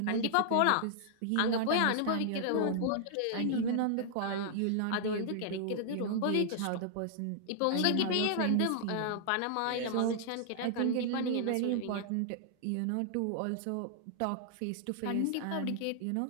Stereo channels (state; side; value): different; both; correlation -0.01